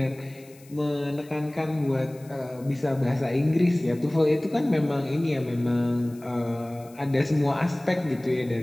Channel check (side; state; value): left; noise; hiss, 26 dB below the sound